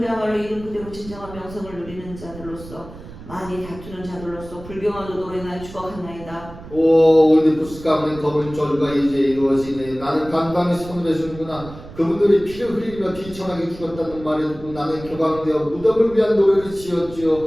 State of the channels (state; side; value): noise; right; rumble, 16 dB below the sound